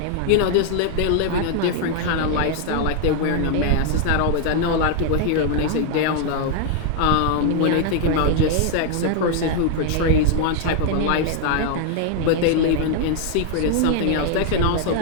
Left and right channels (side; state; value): both; different; correlation 0.00